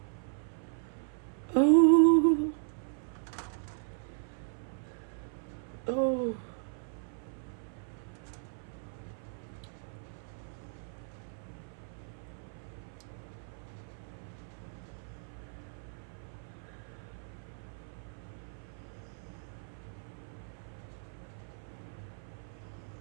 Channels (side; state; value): left; silent; 53 dB below the other